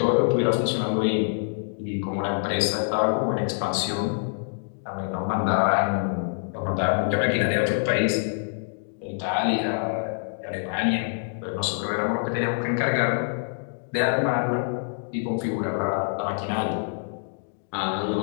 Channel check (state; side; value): silent; right; digital silence